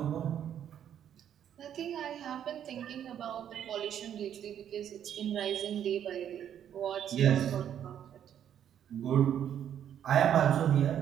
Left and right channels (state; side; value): quieter; left; 9.7 dB